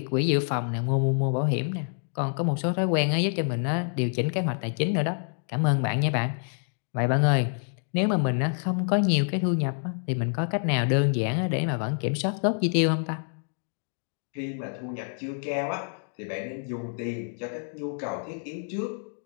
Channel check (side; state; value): right; silent; 60 dB below the other